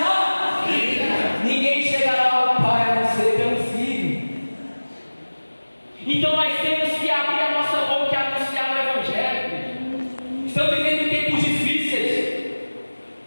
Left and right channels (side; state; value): both; inverted; correlation -1.00